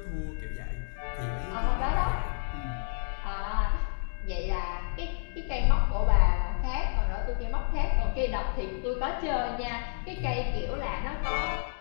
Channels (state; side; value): silent; right; digital silence